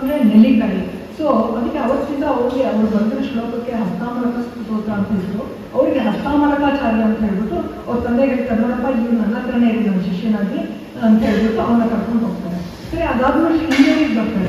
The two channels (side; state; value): both; identical; correlation 1.00